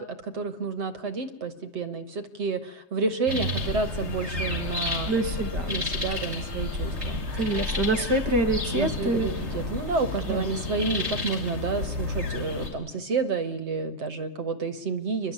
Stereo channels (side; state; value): left; late; 3.2 ms